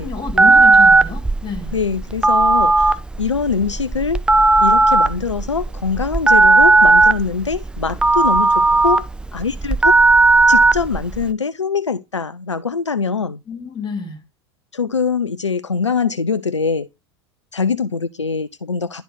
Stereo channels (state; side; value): normal; both; correlation 0.63